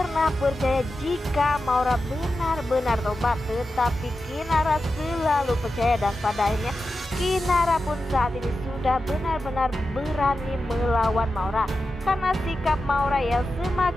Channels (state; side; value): normal; both; correlation 0.91